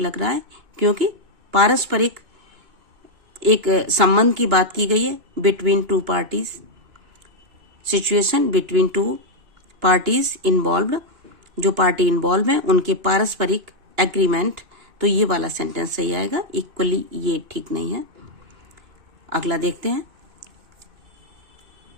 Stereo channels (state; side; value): late; left; 2.8 ms